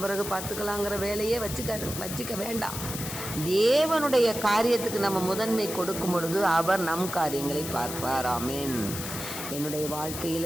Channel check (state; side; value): noise; left; hiss, 7 dB below the sound